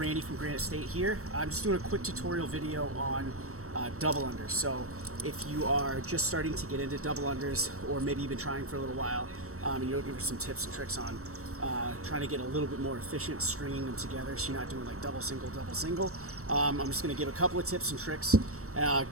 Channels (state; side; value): late; left; 0.64 ms